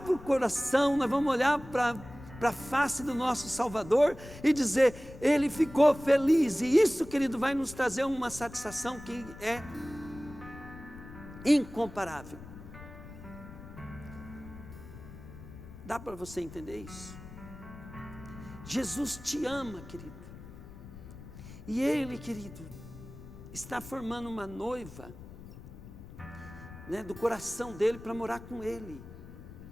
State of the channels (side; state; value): left; noise; rumble, 15 dB below the sound